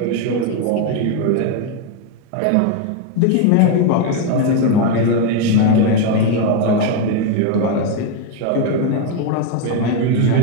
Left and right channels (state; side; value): different; both; correlation 0.01